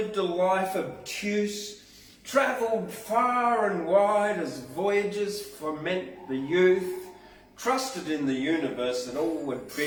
a life obtuse, travelled far and wide as voyages foment the youth, trusted in the universe that all would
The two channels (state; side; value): identical; both; correlation 1.00